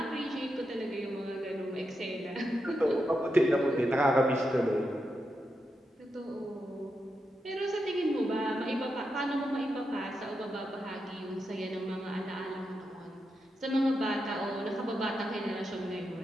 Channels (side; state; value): both; normal; correlation 0.86